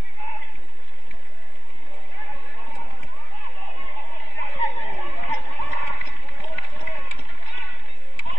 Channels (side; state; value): right; late; 3.5 ms